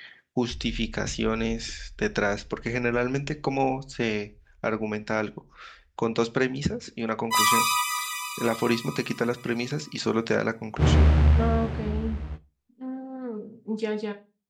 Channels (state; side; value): identical; both; correlation 1.00